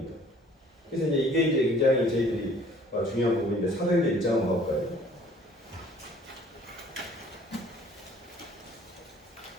그래서 이제 이게 굉장히 저희들이 중요한 부분인데 사도행전 1장 한번 가볼까요?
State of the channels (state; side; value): normal; both; correlation 0.55